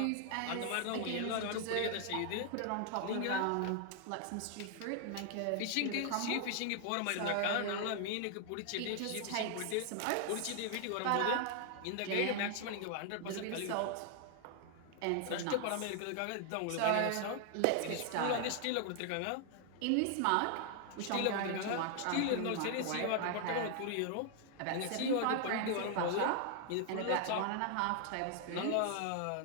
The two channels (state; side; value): different; both; correlation 0.00